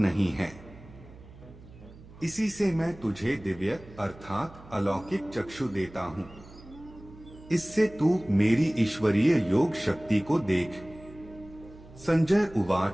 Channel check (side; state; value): right; noise; hum, 20 dB below the sound